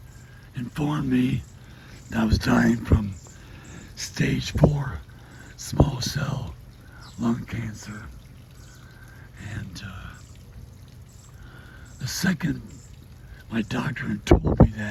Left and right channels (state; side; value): identical; both; correlation 1.00